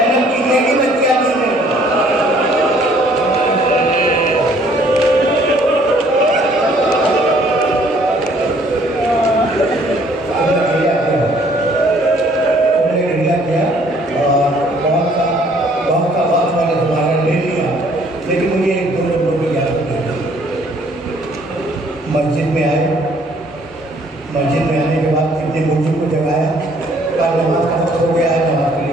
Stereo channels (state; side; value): normal; both; correlation 0.61